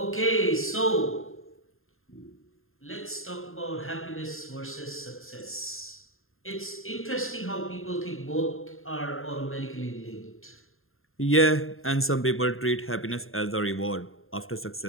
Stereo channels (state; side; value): late; right; 0.61 ms